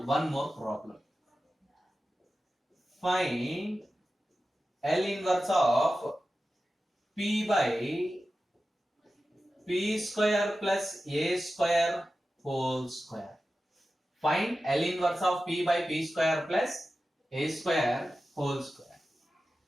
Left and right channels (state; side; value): normal; both; correlation 0.93